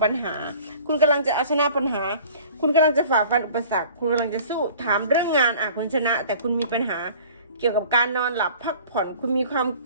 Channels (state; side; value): inverted; both; correlation -0.47